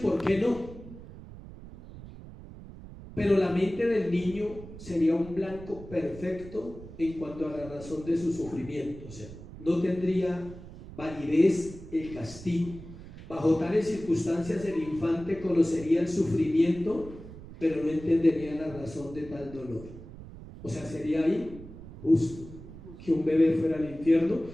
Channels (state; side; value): noise; right; rumble, 15 dB below the sound